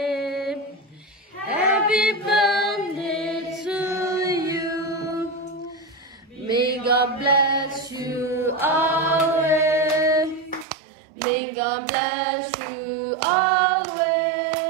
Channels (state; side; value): drops out; left; at 10.7 s